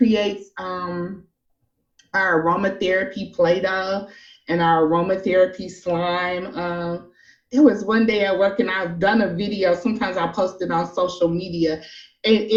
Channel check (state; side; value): identical; both; correlation 1.00